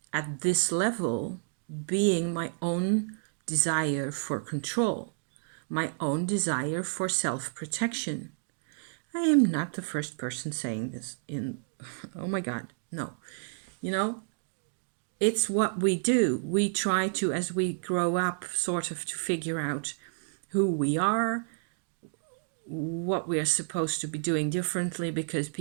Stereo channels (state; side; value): silent; left; digital silence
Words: at this level being my own desire for control, my own desire for self-protection. I am not the first person saying this oh my God, no. It's what we do. We try to, as we grow up, sort of to figure out who we are, what we are supposed to be doing differently because